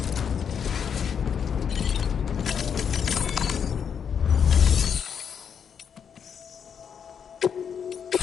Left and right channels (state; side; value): quieter; right; 7.4 dB